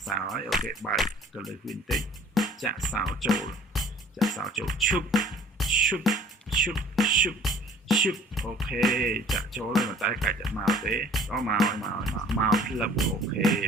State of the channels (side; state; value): both; normal; correlation 0.52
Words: សោហើយអូខេបើកទៅលើវិញតិចចាក់សោចូលឈុបអូខេចាក់ចូលហើយតែកាច់តែមកទេក៏មកផ្លឹបអូខេ